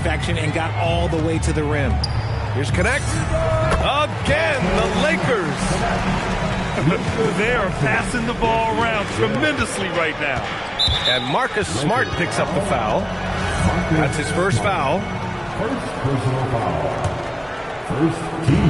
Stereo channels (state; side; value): identical; both; correlation 1.00